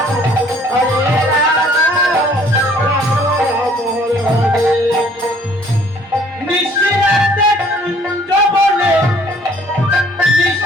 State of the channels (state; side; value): normal; both; correlation 0.58